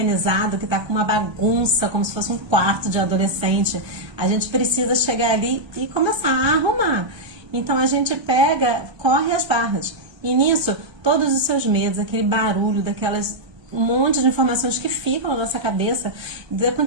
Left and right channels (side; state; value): left; late; 1.3 ms